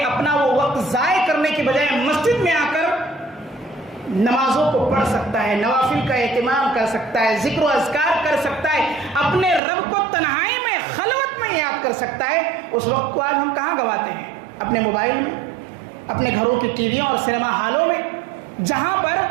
اپنا وہ وقت ضائع کرنے کی بجائے مسجد میں آ کر نمازوں کو پڑھ سکتا ہے، نوافل کا اہتمام کر سکتا ہے، ذکر و اذکار کر سکتا ہے، اپنے رب کو تنہائی میں خلوت میں یاد کر سکتا ہے۔ اس وقت کو آج ہم کہاں گواتے ہیں؟ اپنے موبائل میں، اپنے گھروں کی ٹی ویوں اور سینما ہالوں میں، جہاں پر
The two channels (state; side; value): drops out; left; at 9.6 s